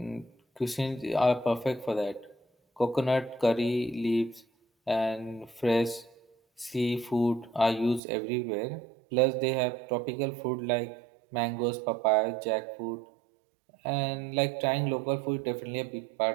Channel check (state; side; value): drops out; left; at 8.0 s